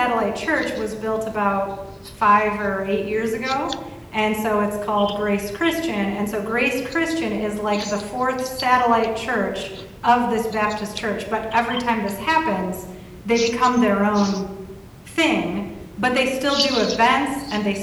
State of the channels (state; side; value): identical; both; correlation 1.00